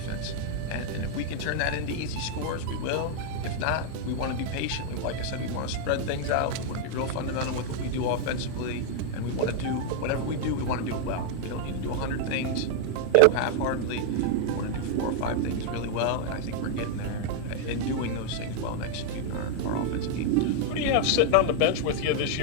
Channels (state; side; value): different; both; correlation 0.00